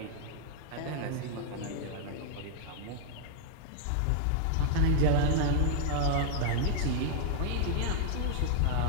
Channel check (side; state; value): both; different; correlation -0.01